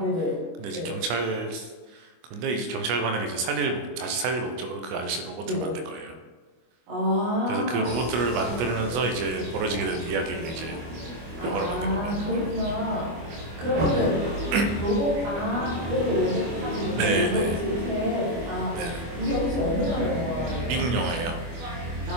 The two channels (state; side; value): late; left; 24 ms